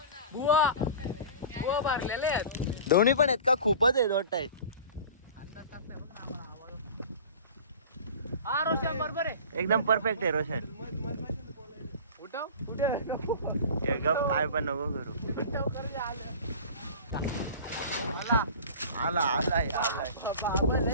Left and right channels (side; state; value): both; inverted; correlation -0.38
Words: बुवा भरलेले आहेत. दोन्ही पण आहेत का खूपच आहेत वाटत अंदाज टाकताय बघ ना आम्हाला आवाज. हा रोशन बरोबर आहे. एकदम परफेक्ट आहे रोशन उठव हे गप काय पण नको करू उठव कर जे आलं. आलाय बाबा